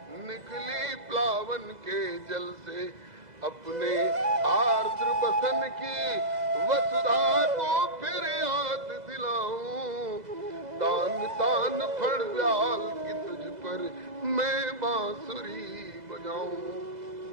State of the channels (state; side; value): late; left; 2.0 ms